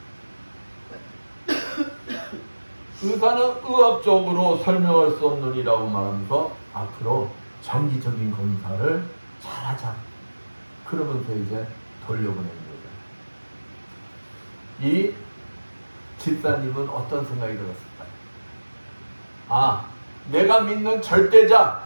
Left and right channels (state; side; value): inverted; both; correlation -1.00